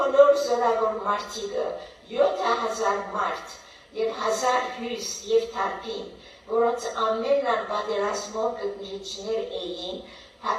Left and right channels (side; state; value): both; identical; correlation 1.00